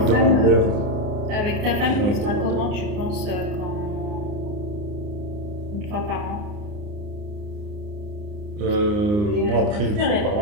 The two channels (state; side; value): late; left; 29 ms